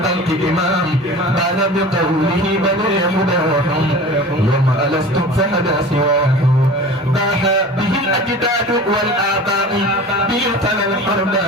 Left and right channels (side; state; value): both; normal; correlation 0.38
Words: إمام قال بقوله بني هداهم يوم ألست فهدى سواهم باح به الأجداد والآباء به تلا